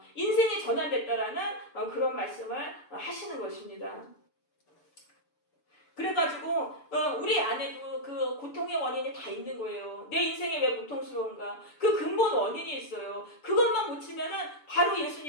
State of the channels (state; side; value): late; right; 6.9 ms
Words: 인생이 전환됐다라는 그런 말씀을 하시는 것입니다. 그래가지고 우리 안에도 그 고통의 원인이 다 있는 거예요. 내 인생이 왜 고통스러운가? 그 근본 원인이 있어요. 그것만 고치면은 바로